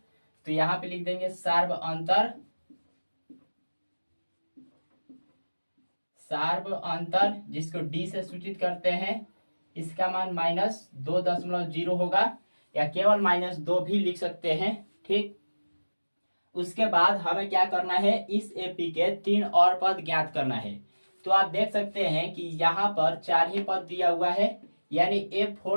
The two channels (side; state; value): both; inverted; correlation -1.00